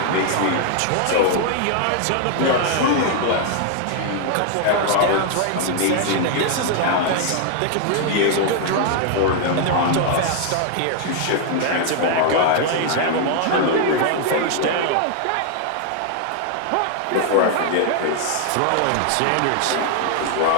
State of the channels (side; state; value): both; different; correlation 0.00